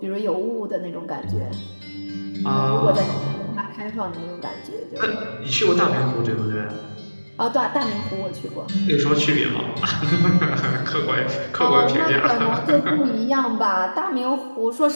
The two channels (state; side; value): inverted; both; correlation -1.00